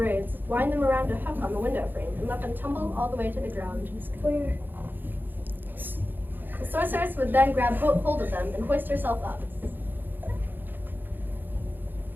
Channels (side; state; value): left; late; 0.091 ms